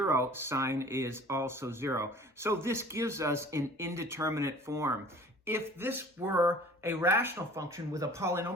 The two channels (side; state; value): both; normal; correlation 0.47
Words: sine is also 0. So this gives us an indeterminate form. If this were a rational function with a